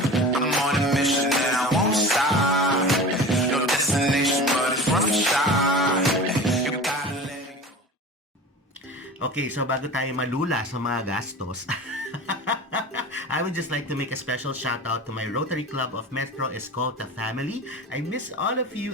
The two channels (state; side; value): normal; both; correlation 0.34